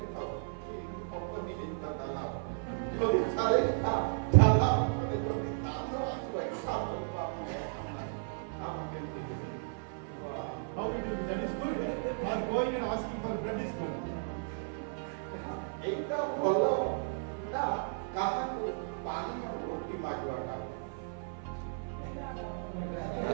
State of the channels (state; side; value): silent; left; 55 dB below the other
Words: ଅଟୋ ବି ଦେଇଥା ତାଲା ଯଦି 40ଟା ତାଲା ଅଟୋରେ ଯଦି କାମ ଆସିବ ଏକ୍ସଟ୍ରା କରିବ ଆପଣ କେମିତି ଦେବେ? How it will be? That is good. Or going and asking for bread is good. ଏଇଟା ଭଲ ନା କାହାକୁ ପାଣି ଆଉ ରୋଟି ମାଗିବାଟା?